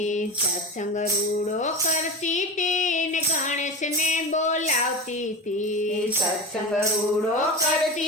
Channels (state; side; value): normal; both; correlation 0.25